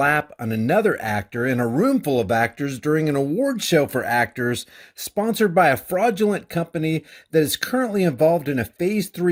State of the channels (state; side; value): identical; both; correlation 1.00